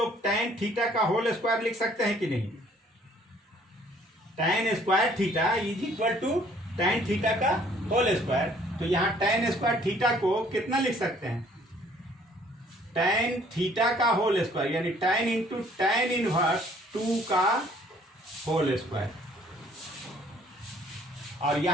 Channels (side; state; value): both; normal; correlation 0.59